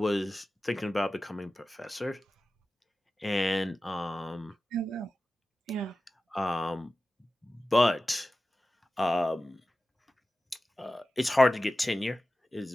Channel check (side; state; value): both; normal; correlation 0.95